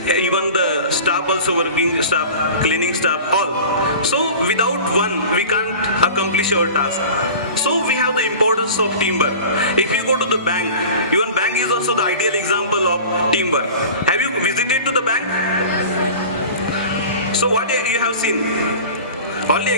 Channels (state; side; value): inverted; both; correlation -0.38